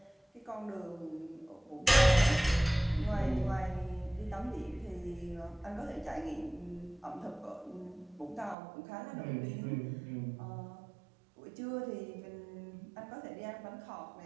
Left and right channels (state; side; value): drops out; left; at 8.6 s